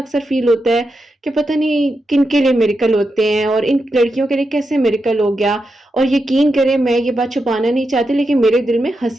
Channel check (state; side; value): normal; both; correlation 0.87